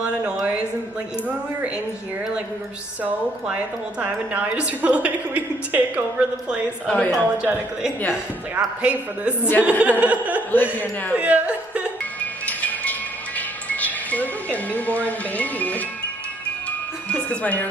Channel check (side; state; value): both; normal; correlation 0.67